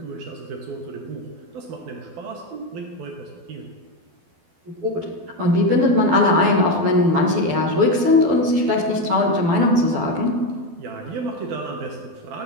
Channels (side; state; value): left; late; 12 ms